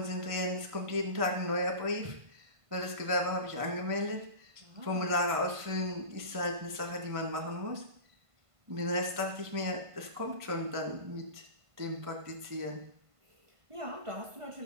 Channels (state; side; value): late; left; 1.5 ms